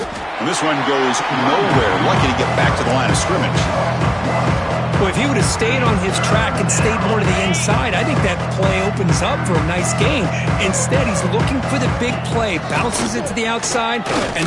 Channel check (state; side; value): identical; both; correlation 1.00